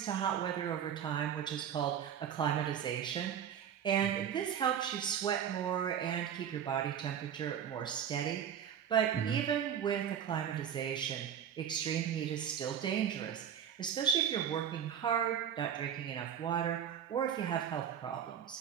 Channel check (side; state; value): left; quieter; 8.8 dB